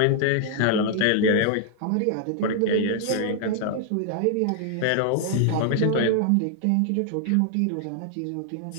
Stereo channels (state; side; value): different; both; correlation 0.00